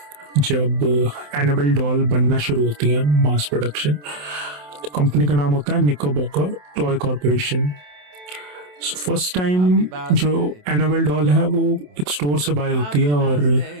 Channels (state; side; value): late; left; 27 ms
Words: जब एनिमल डॉल बनना शुरू होती है मास प्रोडक्शन। तो कंपनी का नाम होता है निकोबॉकर टॉय कॉरपोरेशन। फर्स्ट टाइम जो एनाबेल डॉल है वो एक स्टोर से बाय होती है और